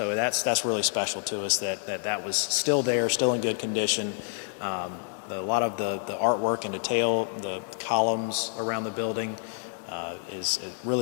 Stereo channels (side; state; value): right; silent; 59 dB below the other